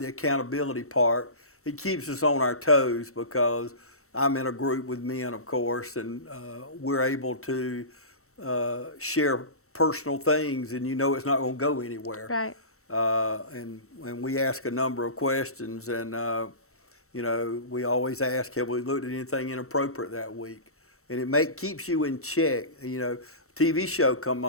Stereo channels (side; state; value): right; late; 0.64 ms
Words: accountability part. It keeps us on our toes, because I'm in a group with men, of course, and we're able to share personal things, and you know it's not going to go anywhere. Right. And we ask a number of questions, and you know, we always ask, have we looked at anything inappropriate that week? And it keeps you in check. You know, TV show come